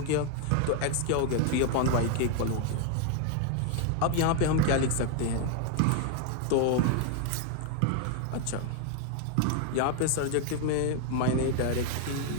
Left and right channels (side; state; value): both; different; correlation 0.00